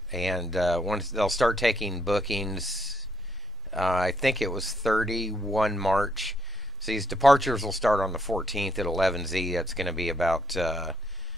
once they'll start taking bookings, I think it was 31 March. So these departures will start on the 14th at 11Z. That's going to be about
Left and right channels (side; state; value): both; normal; correlation 0.93